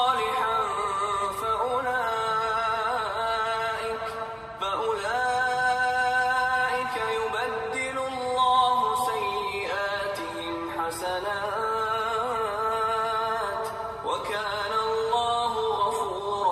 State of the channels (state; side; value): identical; both; correlation 1.00